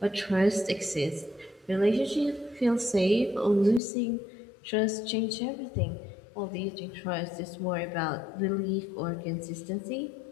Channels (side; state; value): right; drops out; at 3.8 s